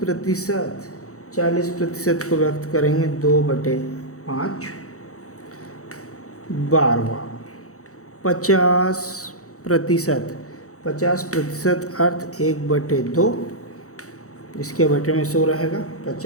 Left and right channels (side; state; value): right; late; 0.65 ms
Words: 40% को व्यक्त करेंगे 2/5। 12वां 50%, 50% अर्थ 1/2, इसके बटे में 100 रहेगा।